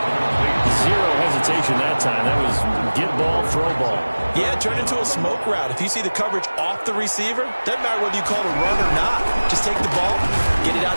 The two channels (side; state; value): both; inverted; correlation -1.00